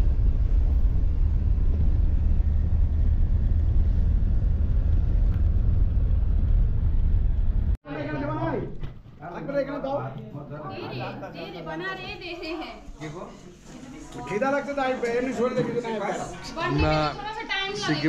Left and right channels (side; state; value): both; identical; correlation 1.00